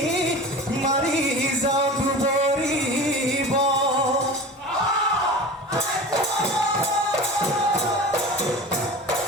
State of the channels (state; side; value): normal; both; correlation 0.34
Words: মাৰি যাওঁ দুবৰিব